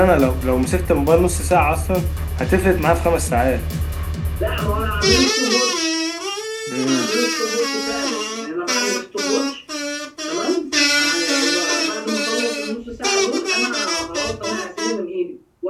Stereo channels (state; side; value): identical; both; correlation 1.00